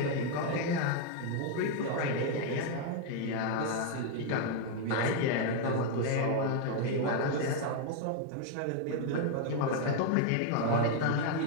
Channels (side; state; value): both; different; correlation 0.00